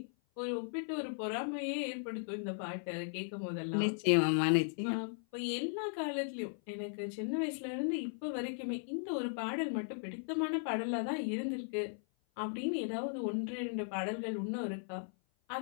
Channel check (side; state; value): right; silent; 53 dB below the other